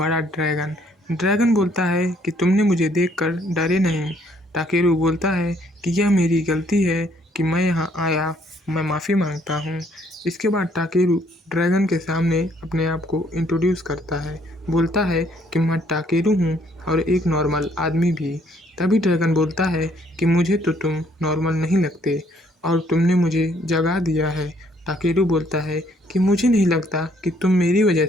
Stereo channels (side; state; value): both; normal; correlation 0.66